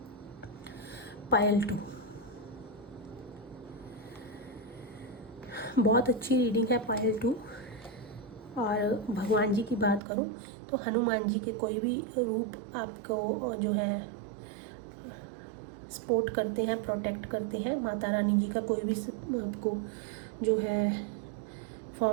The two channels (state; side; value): drops out; left; at 10.0 s